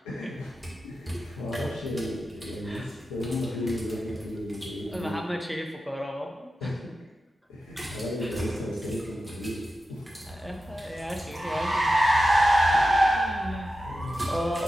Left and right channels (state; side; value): normal; both; correlation 0.92